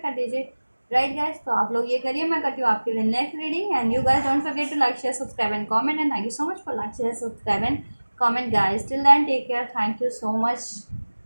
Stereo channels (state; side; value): inverted; both; correlation -1.00